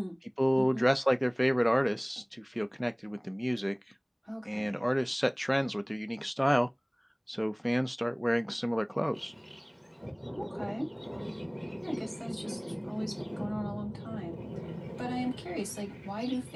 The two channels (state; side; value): identical; both; correlation 1.00